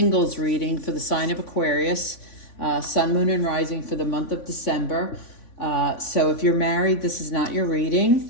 reading for the sign of Aquarius, Sun, Moon, and Rising for the month of December. So if you're married, this is not your reading.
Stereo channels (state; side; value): late; right; 3.5 ms